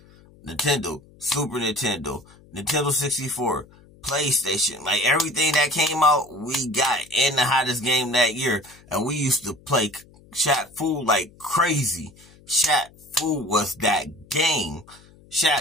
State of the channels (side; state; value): left; noise; hum, 26 dB below the sound